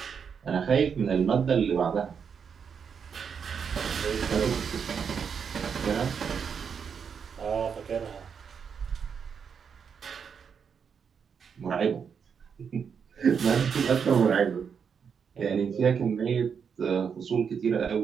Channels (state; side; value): quieter; left; 6.7 dB